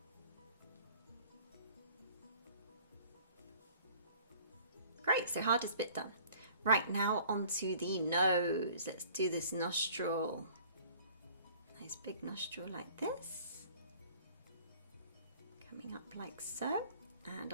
Great, so hardest bit done. Right, now onto the nose. Let's do this nostril. Nice big nostril like this. Coming up like so. And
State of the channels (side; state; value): both; inverted; correlation -0.51